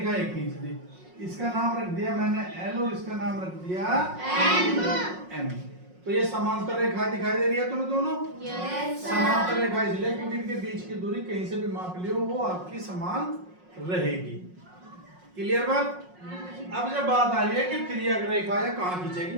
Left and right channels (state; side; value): late; left; 5.5 ms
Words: ये खींच दी। इसका नाम रख दिया मैंने एल और इसका नाम रख दिया एम। तो ये समांतर रेखा दिखाई दे रही है तुम्हें दोनों? समांतर रेखा इसलिए क्योंकि इनके बीच की दूरी कहीं से भी माप लियो वो आपकी समान रहेगी। क्लियर बात? अब जब बात आ रही है कि तिर्यक रेखा या कहाँ खींचेगी,